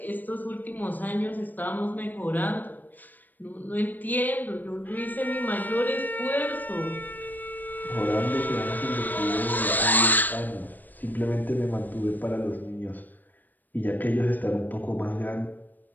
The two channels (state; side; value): late; right; 0.086 ms